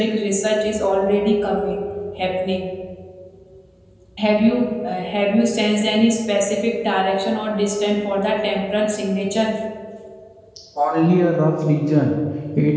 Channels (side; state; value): both; identical; correlation 1.00